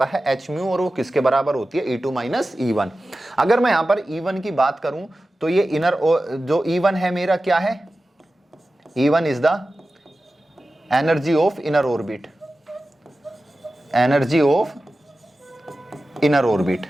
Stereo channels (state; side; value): normal; both; correlation 0.94